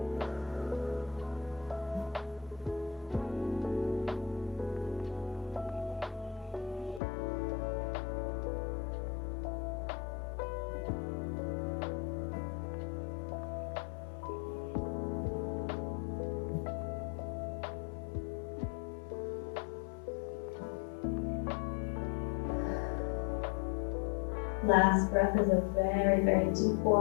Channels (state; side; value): drops out; right; at 7.0 s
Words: Last breath is a very, very deep